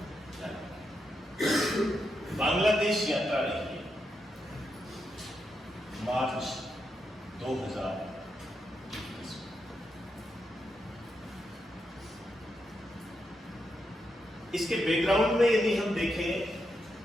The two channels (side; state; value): both; normal; correlation 0.84